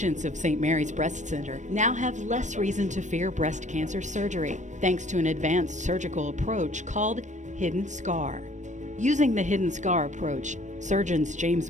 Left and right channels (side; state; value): left; late; 0.35 ms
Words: of St. Mary's Breast Center now have less reason to fear breast cancer surgery, thanks to an advanced surgical approach called hidden scar. Using the hidden scar approach, surgeons